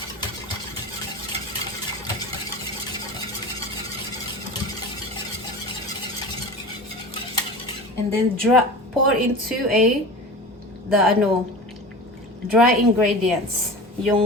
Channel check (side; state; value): both; normal; correlation 0.33